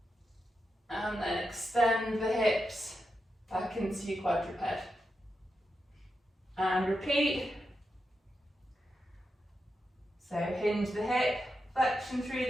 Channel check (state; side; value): normal; both; correlation 0.87